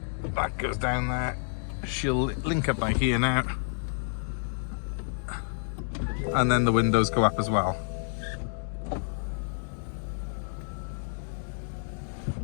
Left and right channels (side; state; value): right; silent; digital silence